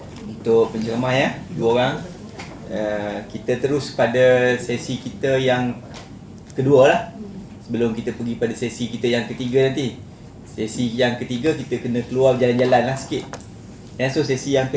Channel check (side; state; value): both; identical; correlation 1.00